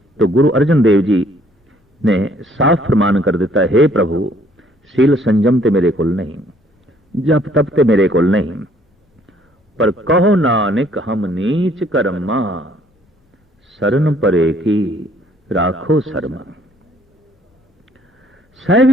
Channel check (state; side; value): normal; both; correlation 0.62